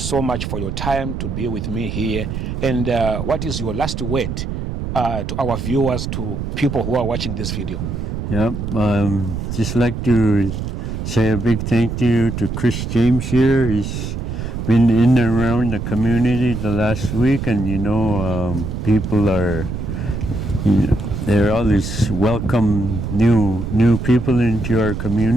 much for your time to be with me here. And what is your last word to our viewers, to people who are watching this video? Yep, just like to say a big thank you to Chris Jambs here. He's been in and around the community the last week, and people are, they're always welcome new people into our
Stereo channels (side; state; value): right; noise; rumble, 4 dB below the sound